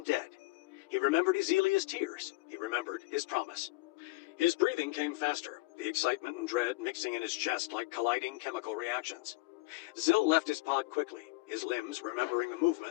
dead. He remembered Izilia's tears. He remembered his promise. His breathing came faster, the excitement and dread mixing in his chest like colliding chemical reactions. Zil left his pod quickly, his limbs remembering the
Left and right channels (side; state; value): right; quieter; 22.3 dB